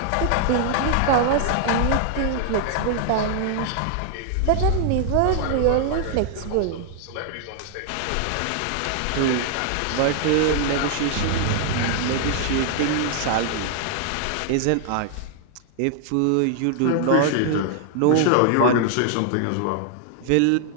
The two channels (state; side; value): different; both; correlation 0.00